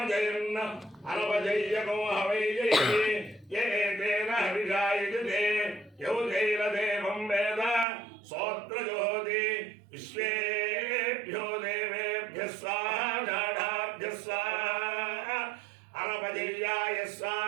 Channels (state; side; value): drops out; left; at 7.9 s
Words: అనపజయ్యకో హవై జయతి ఏ తేన హవిషాయజతే యౌజైరదేవం వేద సోత్రజోతి విశ్వేభ్యో దేవేభ్య స్వాహా జాఢాభ్య స్వాహా అనపజయ్యాయ